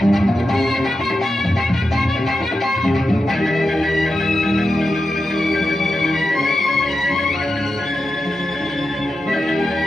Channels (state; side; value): normal; both; correlation 0.90